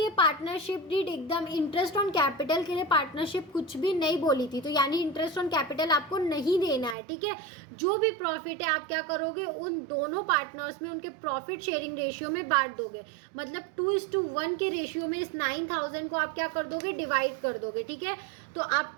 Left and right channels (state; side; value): drops out; left; at 7.0 s